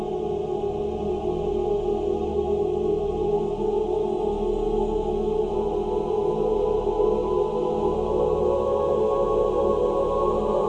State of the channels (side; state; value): both; identical; correlation 1.00